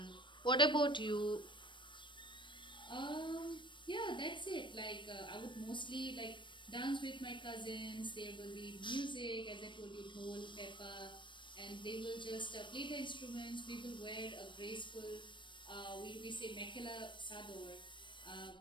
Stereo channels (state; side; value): late; right; 0.23 ms